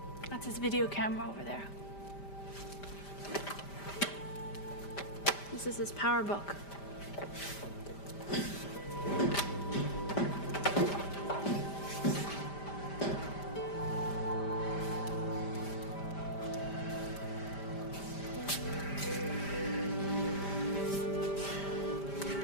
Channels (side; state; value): right; late; 5.1 ms